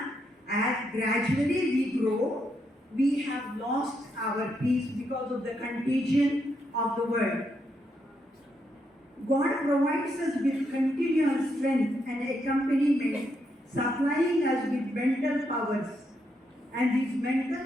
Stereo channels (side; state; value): both; normal; correlation 0.79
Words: as gradually we grow, we have lost our peace because of the contagion of the world. God provides us with continuous strength and accompaniment, supplying us with mental powers. And these mental